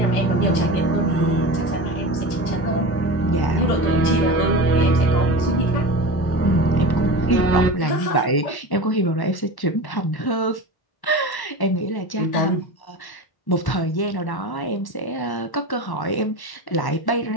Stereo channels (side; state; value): right; late; 1.1 ms